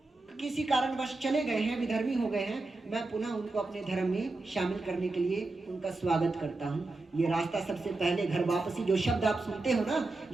किसी कारणवश चले गए हैं, विधर्मी हो गए हैं, मैं पुनः उनको अपने धर्म में शामिल करने के लिए उनका स्वागत करता हूँ। ये रास्ता सबसे पहले घर वापसी, जो शब्द आप सुनते हो ना,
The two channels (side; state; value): left; quieter; 3.2 dB